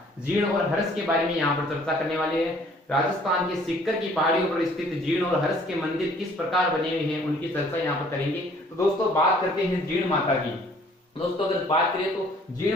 जीण और हर्ष के बारे में यहाँ पर चर्चा करने वाले हैं। राजस्थान के सिक्कर की पहाड़ियों पर स्थित जीण और हर्ष के मंदिर किस प्रकार बने हुए हैं उनकी चर्चा यहाँ पर करेंगे। तो दोस्तों बात करते हैं जीण माता की। दोस्तों अगर बात करें तो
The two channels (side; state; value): both; normal; correlation 0.58